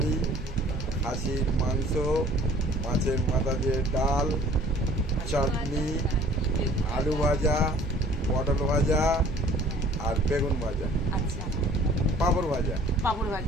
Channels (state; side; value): normal; both; correlation 0.52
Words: খাসির মাংস, মাছের মাথা দিয়ে ডাল, চাটনি, আলু ভাজা, পটল ভাজা আর বেগুন ভাজা, আচ্ছা, পাঁপড় ভাজা, পাঁপড়